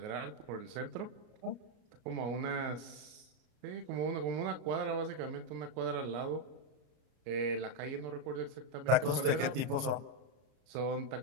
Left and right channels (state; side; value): late; left; 33 ms